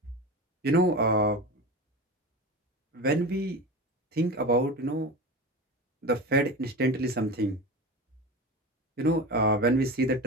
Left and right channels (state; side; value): normal; both; correlation 0.27